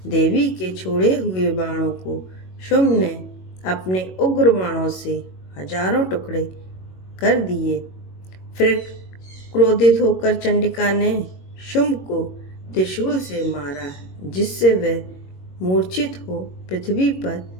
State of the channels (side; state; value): right; late; 22 ms